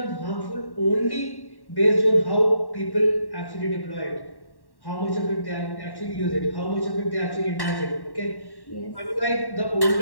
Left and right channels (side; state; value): right; late; 1.1 ms